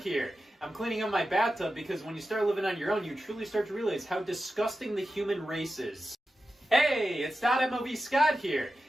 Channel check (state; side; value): normal; both; correlation 0.92